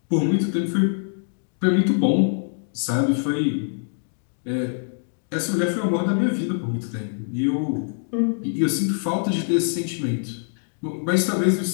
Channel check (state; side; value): silent; right; 63 dB below the other